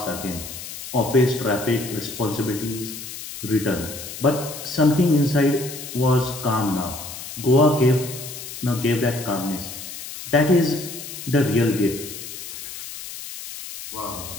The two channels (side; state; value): left; noise; hiss, 10 dB below the sound